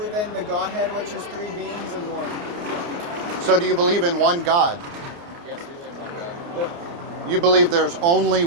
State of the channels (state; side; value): late; left; 29 ms